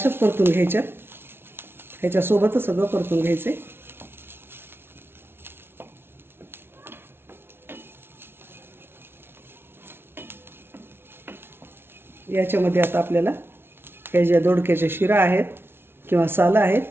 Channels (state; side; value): late; left; 0.11 ms